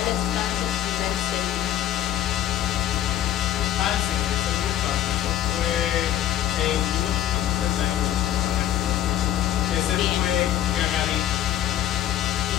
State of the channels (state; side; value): quieter; right; 11.6 dB